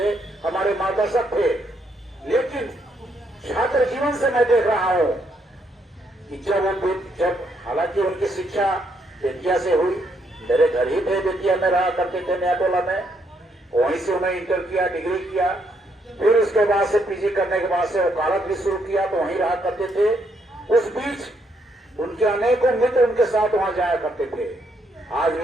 हमारे मार्गदर्शक थे, लेकिन छात्र जीवन से मैं देख रहा हूं कि जब हालांकि उनकी शिक्षा बेतिया से हुई, मेरे घर ही थे, बेतिया में रहा करते थे, नया टोला में, वहीं से उन्होंने इंटर किया, डिग्री किया, फिर उसके बाद से पीजी करने के बाद से वकालत भी शुरू किया, तो वहीं रहा करते थे। उस बीच उनके अनेकों मित्र उनके साथ वहां जाया करते थे। आज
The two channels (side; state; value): both; normal; correlation 0.74